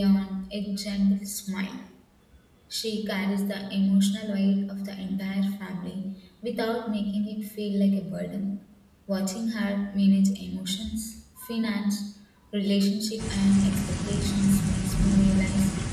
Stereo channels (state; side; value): identical; both; correlation 1.00